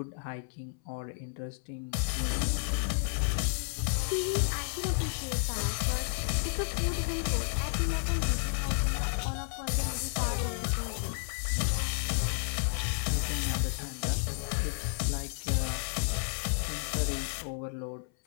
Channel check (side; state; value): right; silent; 57 dB below the other